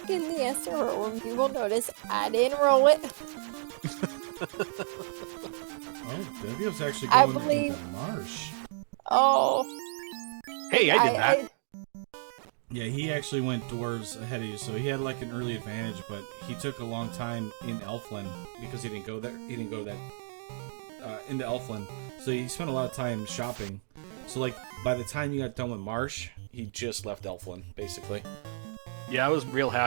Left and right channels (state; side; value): silent; left; digital silence